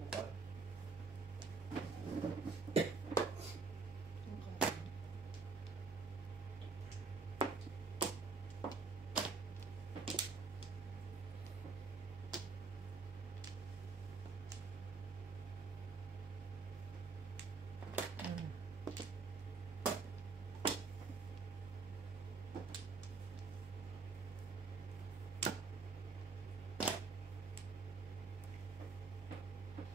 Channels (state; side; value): quieter; left; 4.6 dB